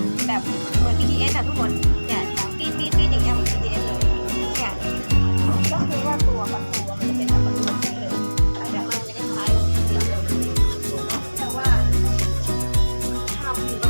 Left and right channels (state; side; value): inverted; both; correlation -1.00